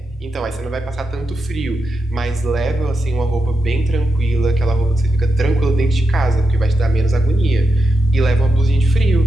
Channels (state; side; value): normal; both; correlation 0.87